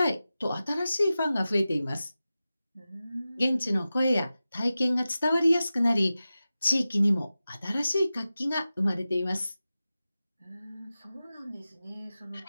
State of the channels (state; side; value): inverted; both; correlation -0.95